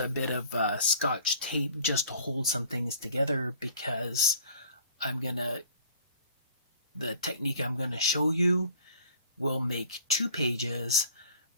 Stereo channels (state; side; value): inverted; both; correlation -0.49